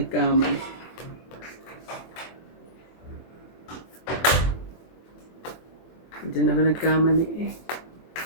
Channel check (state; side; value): late; right; 24 ms